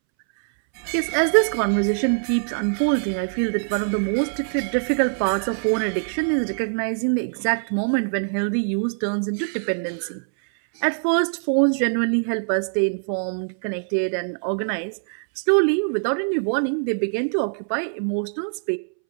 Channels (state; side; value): silent; left; 63 dB below the other